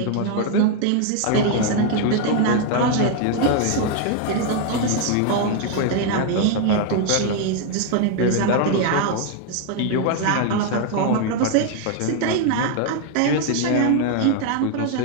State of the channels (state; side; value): different; both; correlation 0.00